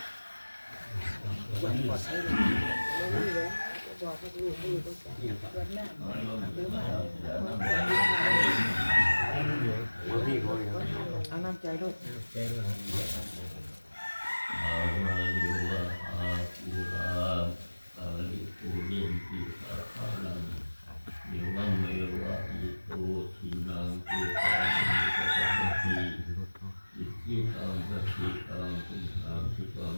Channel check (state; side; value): inverted; both; correlation -1.00